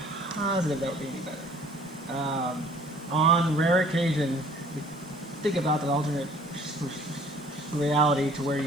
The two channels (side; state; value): right; noise; hiss, 30 dB below the sound